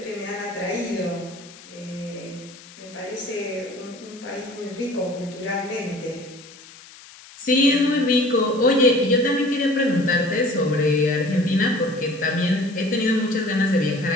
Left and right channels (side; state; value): left; noise; hiss, 20 dB below the sound